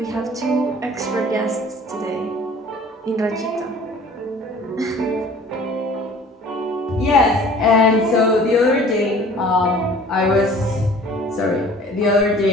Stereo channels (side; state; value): both; normal; correlation 0.49